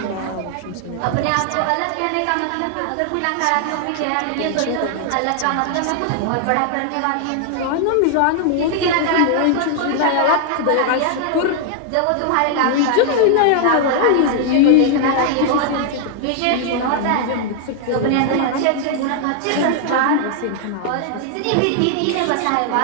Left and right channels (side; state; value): both; different; correlation 0.00